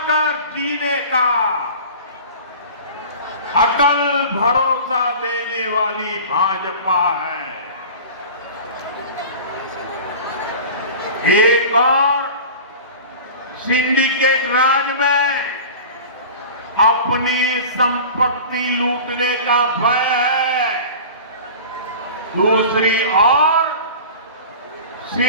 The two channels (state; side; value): inverted; both; correlation -0.37